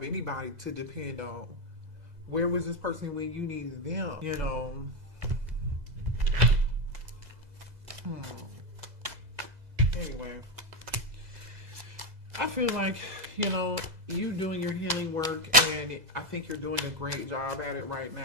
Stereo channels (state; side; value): late; left; 2.0 ms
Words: anybody to depend on. Where was this person when you needed them? You know. Anyway, I feel like, you doing your healing work, and I think you're doing a great job at it right